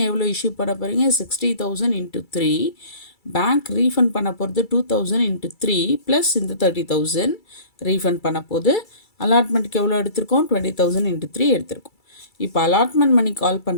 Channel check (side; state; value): right; late; 2.3 ms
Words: எவ்வளோ இஷ்யூ பண்ண போகிறீங்க, 60,000 × 3. பேங்க் ரீஃபண்ட் பண்ண போகிறது 2,000 × 3 ப்ளஸ் இந்த 30,000 ரீஃபண்ட் பண்ண போது. அலாட்மெண்ட்டுக்கு எவ்வளோ எடுத்திருக்கோம், 20,000 × 3 எடுத்திருக்கோம். இப்போ அலாட்மெண்ட் மணி கால்